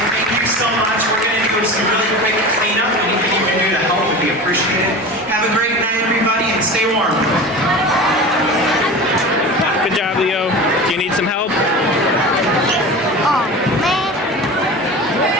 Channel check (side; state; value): both; normal; correlation 0.32